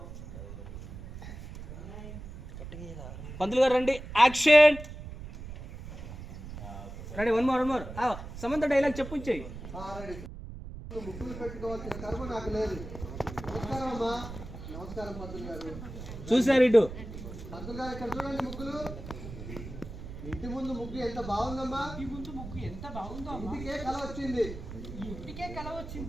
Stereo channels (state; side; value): noise; right; rumble, 11 dB below the sound